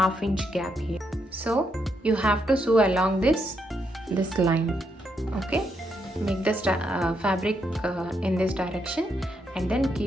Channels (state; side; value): normal; both; correlation 0.79